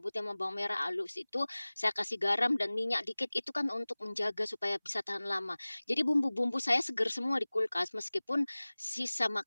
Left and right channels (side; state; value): both; inverted; correlation -1.00